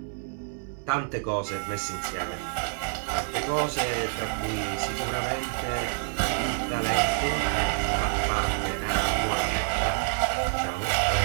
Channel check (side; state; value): left; silent; 60 dB below the other